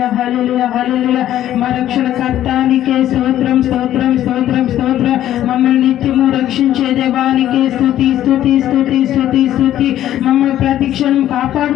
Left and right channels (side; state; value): right; quieter; 12.3 dB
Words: హల్లెలూయా హల్లెలూయా మా రక్షణకర్తానికే స్తోత్రం స్తోత్రం స్తోత్రం స్తోత్రం మమ్మల్ని నిత్యము రక్షించే దేవానికే స్తుతి స్తుతి స్తుతి స్తుతి స్తుతి మమ్మల్ని ప్రతిక్షణం